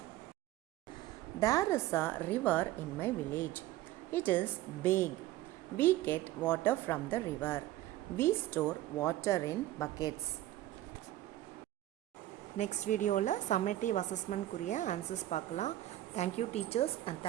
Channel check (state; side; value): quieter; left; 14.8 dB